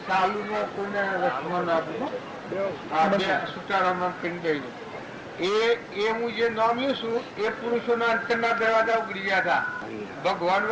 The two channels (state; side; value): identical; both; correlation 1.00